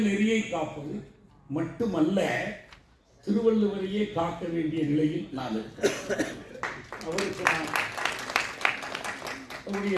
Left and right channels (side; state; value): both; identical; correlation 1.00